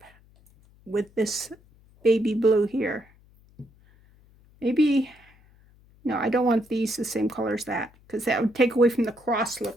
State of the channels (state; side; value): noise; left; hum, 29 dB below the sound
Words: with this baby blue here. Maybe, no, I don't want these the same color as that because that would take away from the cross